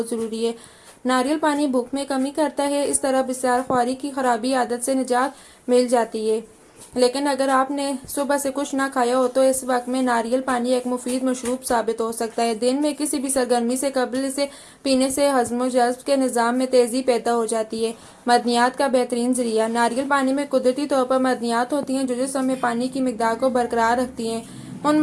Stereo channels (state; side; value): identical; both; correlation 1.00